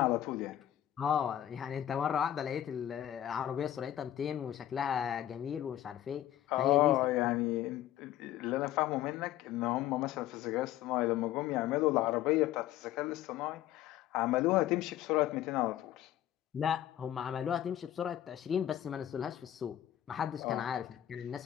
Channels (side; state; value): right; quieter; 12.4 dB